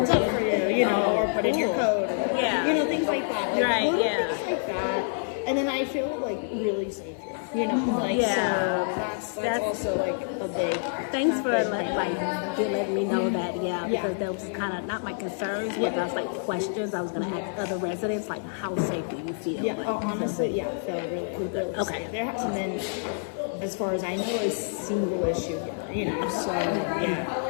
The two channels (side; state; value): right; silent; 60 dB below the other